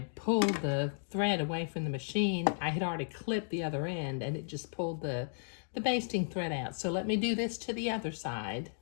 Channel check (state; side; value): silent; right; digital silence